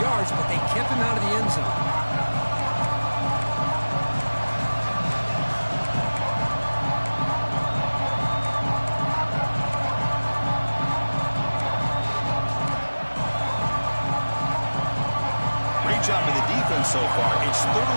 but they kept him out of the end zone. Great job by the defense so far. It's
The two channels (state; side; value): inverted; both; correlation -1.00